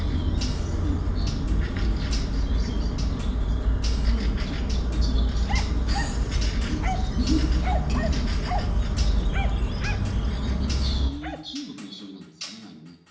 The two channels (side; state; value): both; identical; correlation 1.00